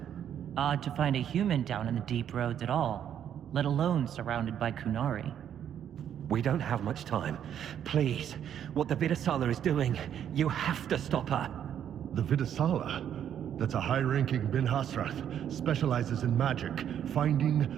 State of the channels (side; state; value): left; quieter; 9.5 dB